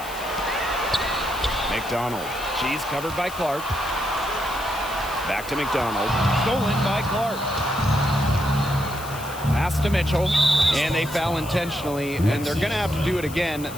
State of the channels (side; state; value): left; noise; hiss, 15 dB below the sound